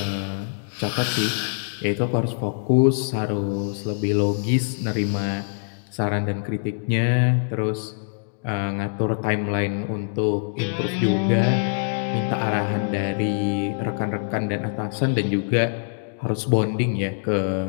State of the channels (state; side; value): silent; right; digital silence